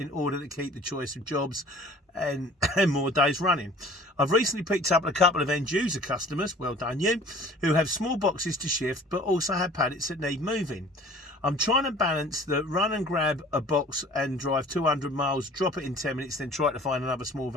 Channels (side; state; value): both; normal; correlation 0.48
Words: order to keep the choice of jobs and more days running. I've recently picked up a couple of end user customers, well done you, who have small boxes to shift but also have pallets that need moving. I'm trying to balance the run and grab a box and drive 200 miles, drop it in 10 minutes, then try to find another small